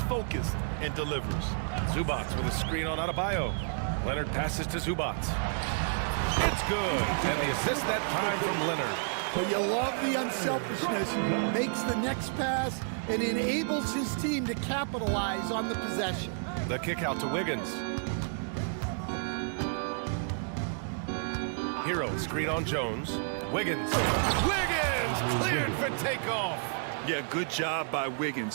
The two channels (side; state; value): left; silent; digital silence